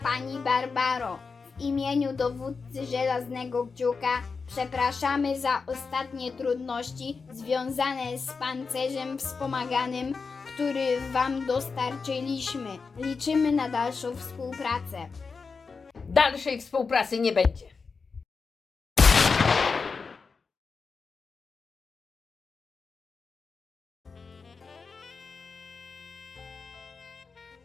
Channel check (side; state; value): right; quieter; 4.8 dB